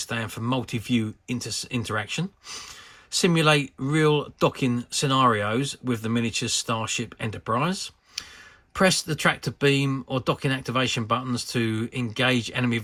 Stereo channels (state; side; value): identical; both; correlation 1.00